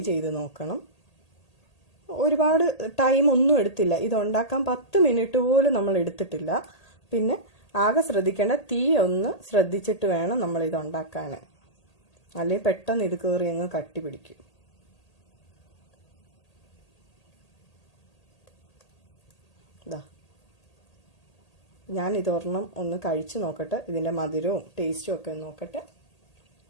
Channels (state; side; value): late; right; 1.8 ms